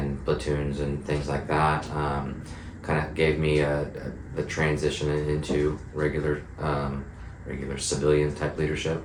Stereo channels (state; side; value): identical; both; correlation 1.00